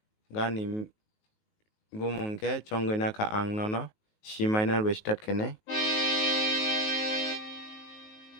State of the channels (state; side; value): late; right; 19 ms